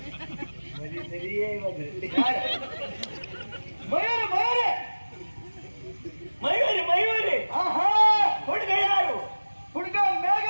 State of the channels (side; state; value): both; inverted; correlation -1.00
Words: ಸರಿಯೇ ಮಯೂರಿ ಮಯೂರಿ ಮಯೂರಿ ಮಯೂರಿ. ಹುಡುಗ ಯಾರು? ಹುಡುಗ